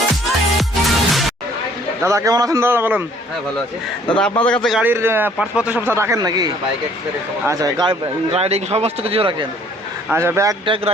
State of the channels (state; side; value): normal; both; correlation 0.58